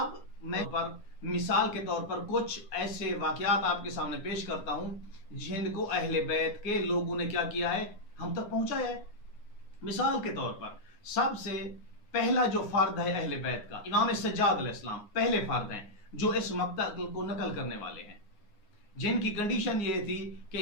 میں مثال کے طور پر کچھ ایسے واقعات آپ کے سامنے پیش کرتا ہوں جن کو اہل بیت کے لوگوں نے کیا کیا ہے، ہم تک پہنچایا ہے۔ مثال کے طور پر سب سے پہلا جو فرد ہے اہل بیت کا، امام سجاد علیہ السلام پہلے فرد ہیں جو اس مقتل کو نقل کرنے والے ہیں، جن کی کنڈیشن یہ تھی کہ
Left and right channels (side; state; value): right; late; 9.6 ms